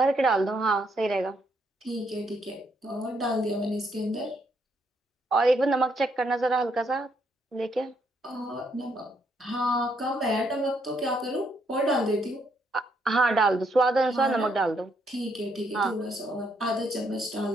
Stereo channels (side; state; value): both; normal; correlation 0.73